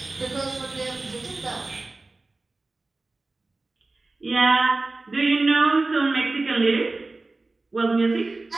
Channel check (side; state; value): left; quieter; 3.3 dB